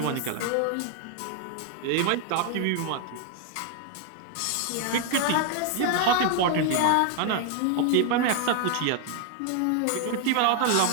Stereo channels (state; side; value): different; both; correlation 0.00